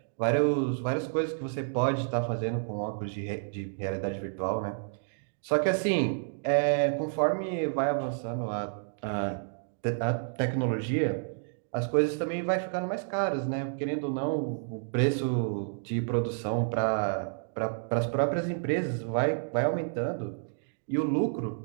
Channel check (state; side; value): silent; left; digital silence